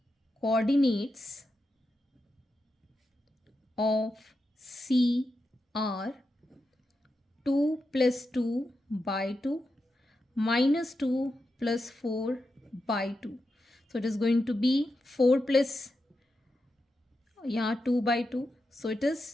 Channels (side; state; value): both; normal; correlation 0.88